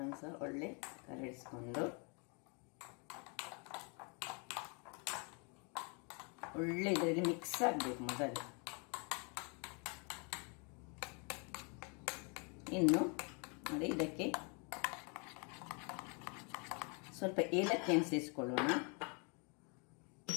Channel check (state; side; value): quieter; right; 34.8 dB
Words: ಸಹ ಒಳ್ಳೆ ಕಲರಿಸಿಕೊಂಡು ಒಳ್ಳೆ ಇದರಲ್ಲಿ ಮಿಕ್ಸ್ ಆಗಬೇಕು ಮೊದಲು. ಇನ್ನು ನೋಡಿ, ಇದಕ್ಕೆ ಸ್ವಲ್ಪ ಏಲಕ್ಕಿಯನ್ನು ಸೇರಿಸಿಕೊಳ್ಳೋಣ.